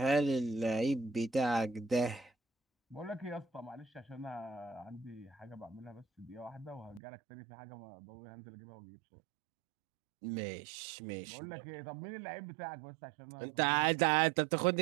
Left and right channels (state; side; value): drops out; left; at 7.0 s